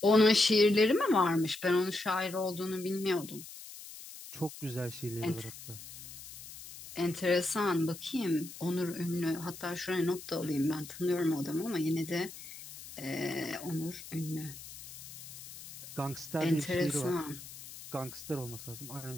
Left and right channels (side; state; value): left; noise; hiss, 14 dB below the sound